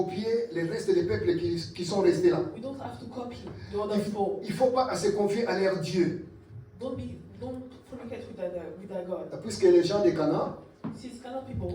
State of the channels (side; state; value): both; identical; correlation 1.00